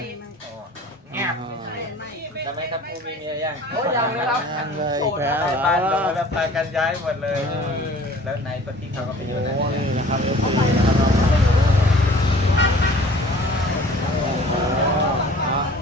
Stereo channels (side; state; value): both; normal; correlation 0.49